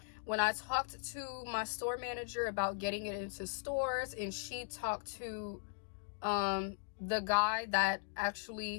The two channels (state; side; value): silent; right; digital silence